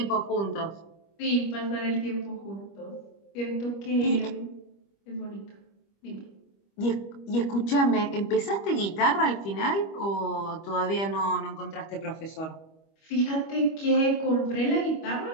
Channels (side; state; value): right; late; 25 ms